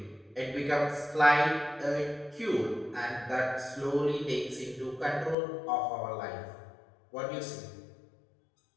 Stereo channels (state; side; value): drops out; right; at 5.4 s